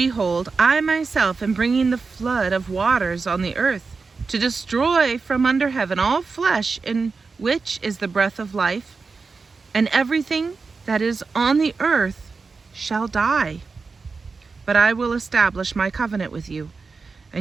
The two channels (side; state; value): left; quieter; 4.5 dB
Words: I myself am bringing the flood of waters on the earth, to destroy from under heaven all flesh in which is the breath of life, and everything that is on the earth shall die. But I will establish my covenant with you,